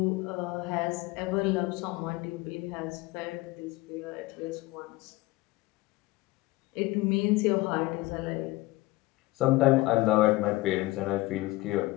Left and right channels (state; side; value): quieter; right; 20.0 dB